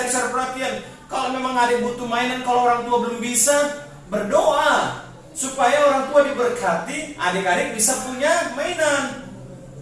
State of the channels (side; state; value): both; identical; correlation 1.00